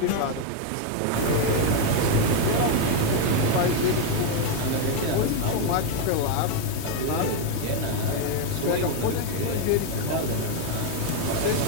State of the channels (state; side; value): different; both; correlation 0.01